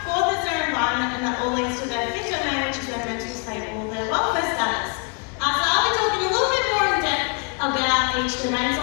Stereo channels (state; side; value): quieter; right; 37.5 dB